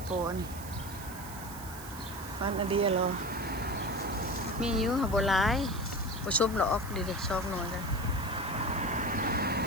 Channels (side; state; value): right; noise; hiss, 14 dB below the sound